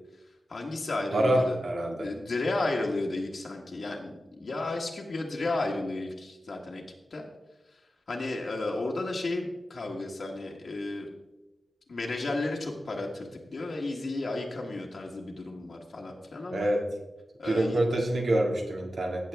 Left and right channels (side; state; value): both; normal; correlation 0.92